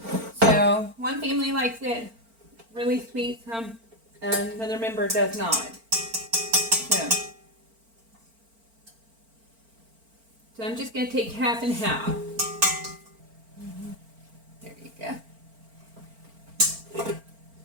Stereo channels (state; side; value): late; left; 4.4 ms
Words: So one family likes it really sweet, another member does not. So I'm just going to take half and half. There you go.